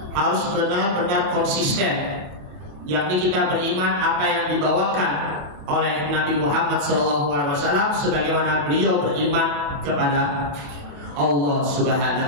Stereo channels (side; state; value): left; late; 27 ms